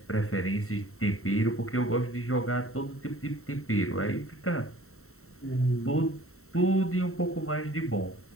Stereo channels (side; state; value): right; late; 0.63 ms